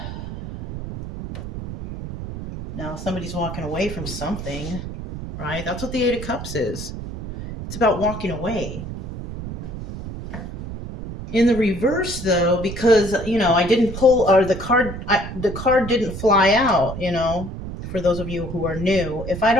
Now, somebody's walking away from something, right? That's what the 8 of Cups is. It's about walking away. In the reverse, though, because, I didn't pull, or the card didn't fly out, for those of you who are new. If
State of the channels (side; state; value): right; noise; rumble, 8 dB below the sound